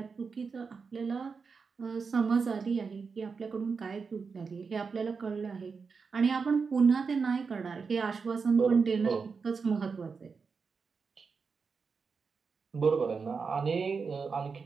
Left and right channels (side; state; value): left; quieter; 5.2 dB